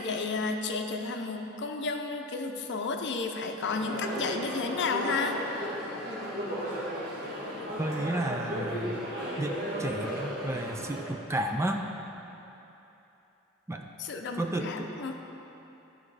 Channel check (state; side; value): normal; both; correlation 0.36